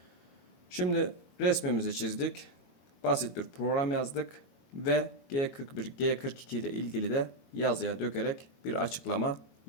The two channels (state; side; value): late; right; 22 ms